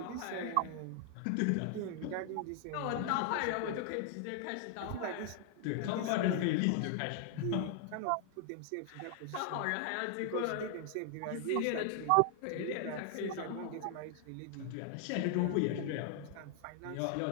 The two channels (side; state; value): both; different; correlation 0.00